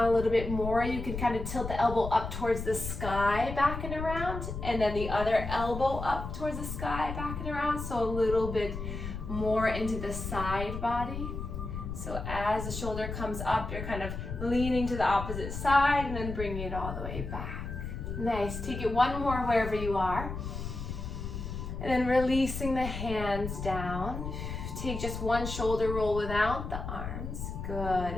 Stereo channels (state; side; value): noise; left; rumble, 6 dB below the sound